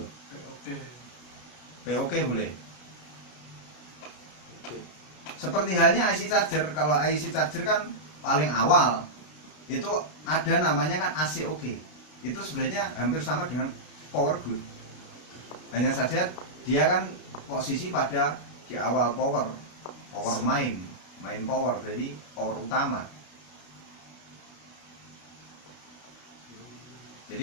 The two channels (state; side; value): late; right; 33 ms